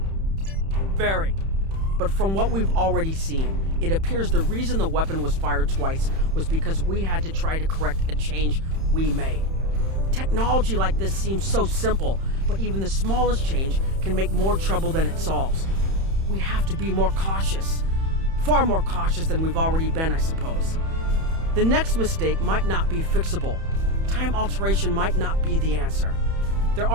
Very. But from what we've already seen, it appears the reason the weapon was fired twice was because we had to try to correct a change we made. Technology like this seems so simple, but even the smallest change can make more trouble than it solves. We have to be more cautious. Far more cautious than we've already been, I suppose. The next mistake might not be fixable. Time alteration might not be the answer. There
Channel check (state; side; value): late; left; 31 ms